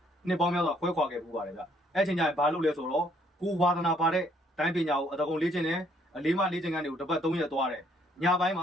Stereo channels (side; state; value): both; normal; correlation 0.66